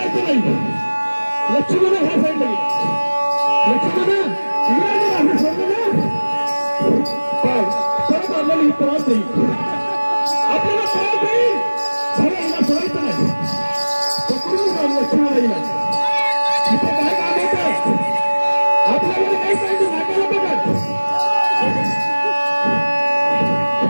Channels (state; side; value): inverted; both; correlation -1.00